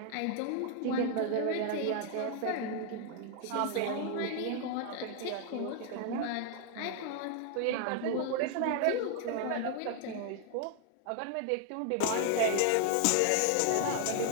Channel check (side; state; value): both; different; correlation 0.00